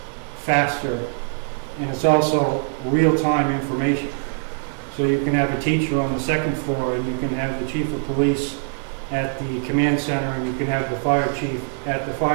faster, and it's also real-time information. So you can have a teacher on the second floor, and you can have the chief of police at the command center, and you can have the fire chief at the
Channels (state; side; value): silent; left; digital silence